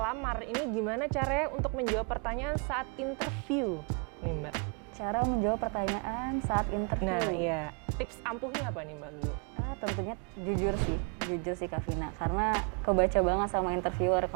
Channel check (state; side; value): quieter; left; 37.4 dB